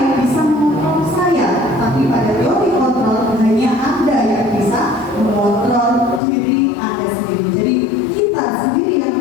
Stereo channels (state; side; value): drops out; right; at 6.2 s